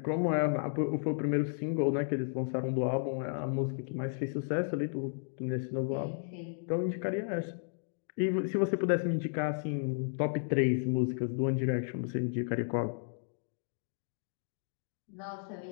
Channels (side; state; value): right; silent; digital silence